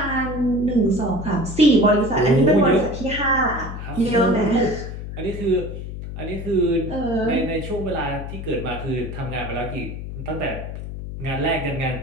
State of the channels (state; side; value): noise; left; hum, 8 dB below the sound